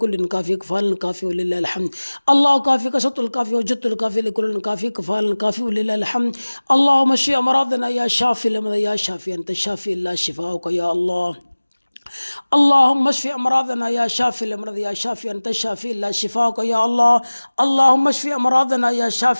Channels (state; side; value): inverted; both; correlation -1.00